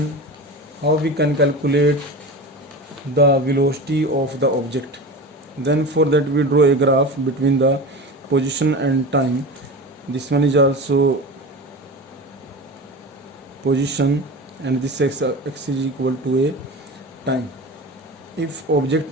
how we can calculate the velocity of the object. Then for that we draw a graph between the position and time. This one is also position, and this x is equal to a time. If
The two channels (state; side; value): normal; both; correlation 0.30